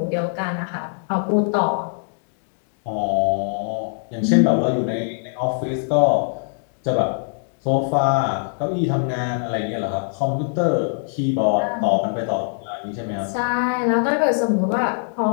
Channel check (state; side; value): silent; right; digital silence